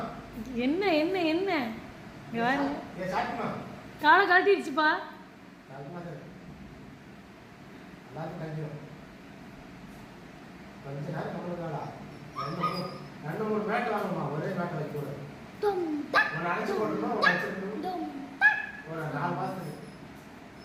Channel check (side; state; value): both; identical; correlation 1.00